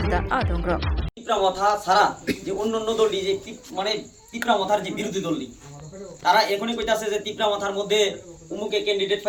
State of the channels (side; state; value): both; identical; correlation 1.00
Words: Adongro Tipra মাথা ছাড়া যে অন্যান্য দলটি যে মানে তিপ্রা মাথার যে বিরোধী দলটি তারা এখনই কইতাছে যে তিপ্রা মাথার মধ্যে উমুকে ক্যান্ডিডেট